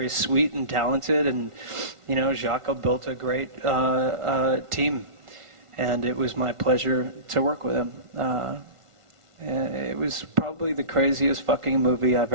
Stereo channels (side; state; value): left; late; 1.5 ms